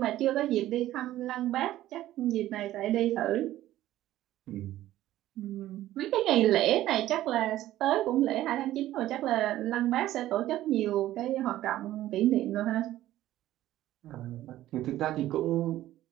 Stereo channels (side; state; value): left; quieter; 14.3 dB